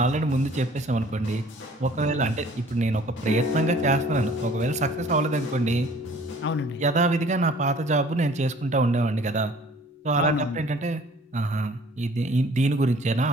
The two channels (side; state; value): both; normal; correlation 0.52